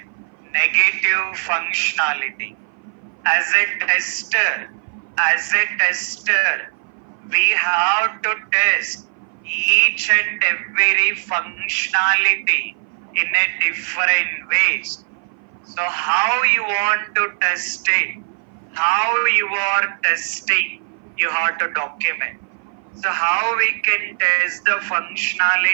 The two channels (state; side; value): silent; left; 59 dB below the other